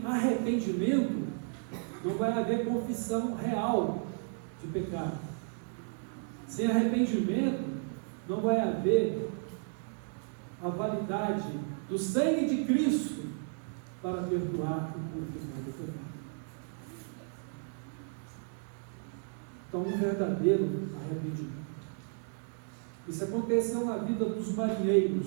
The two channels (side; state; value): left; silent; 56 dB below the other